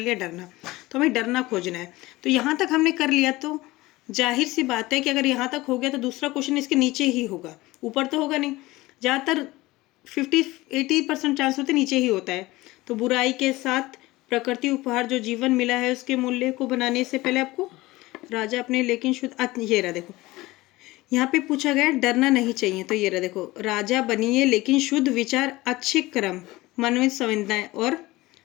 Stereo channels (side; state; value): right; quieter; 19.5 dB